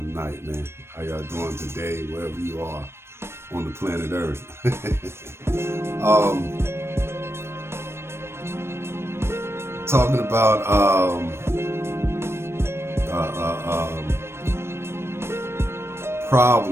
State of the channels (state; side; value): late; left; 0.12 ms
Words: man? How y'all doing today, wherever you are on the planet Earth? um, talking about